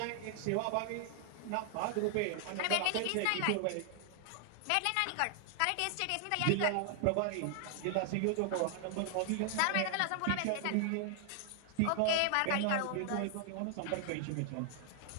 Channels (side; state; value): both; different; correlation 0.00